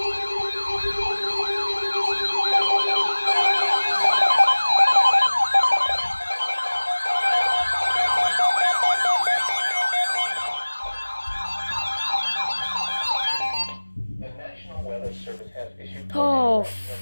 The National Weather Service has issued Oh,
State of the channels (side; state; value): both; inverted; correlation -1.00